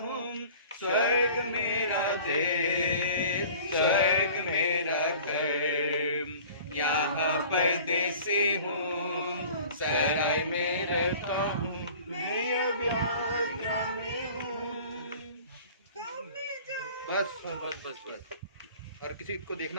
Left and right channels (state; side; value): inverted; both; correlation -0.45